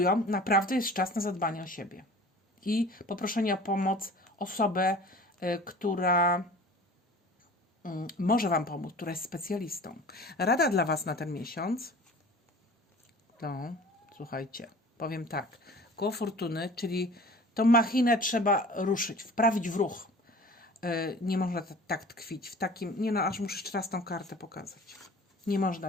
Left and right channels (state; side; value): normal; both; correlation 0.43